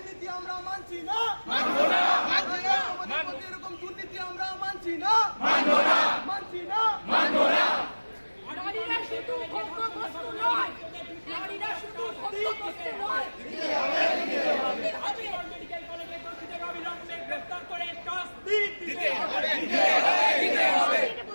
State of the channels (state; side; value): inverted; both; correlation -1.00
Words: আমরা মানছি না। সমাজের প্রতি এরকম দুর্নীতি আমরা মানছি না। নারীরা শুধু ভোগ্যবস্তু নয়, নারীরা শুধু ভোগ্যবস্তু নয়। মেডিকেল কলেজের দোষীদের অবিলম্বে গ্রেফতার করে শাস্তি দিতে হবে।